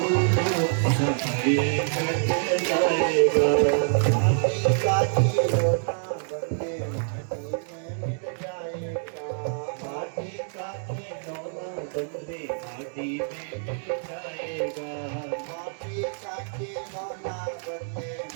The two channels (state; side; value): silent; left; digital silence